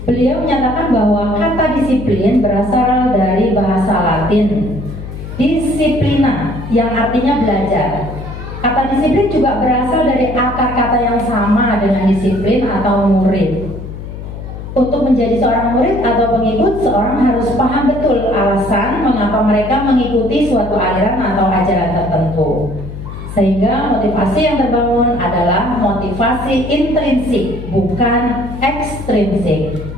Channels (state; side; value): noise; left; hum, 10 dB below the sound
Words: Beliau menyatakan bahwa kata disiplin berasal dari bahasa Latin disciplina yang artinya belajar. Kata disiplin juga berasal dari akar kata yang sama dengan disiplin atau murid. Untuk menjadi seorang murid atau pengikut, seorang harus paham betul alasan mengapa mereka mengikuti suatu aliran atau ajaran tertentu. Sehingga motivasi yang terbangun adalah motivasi intrinsik, bukan ekstrinsik.